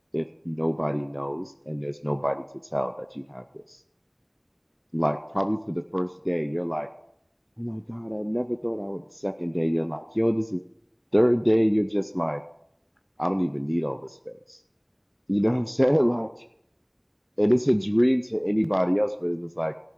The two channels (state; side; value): identical; both; correlation 1.00